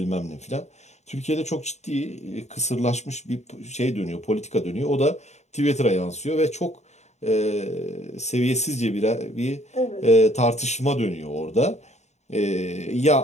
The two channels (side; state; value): right; late; 0.33 ms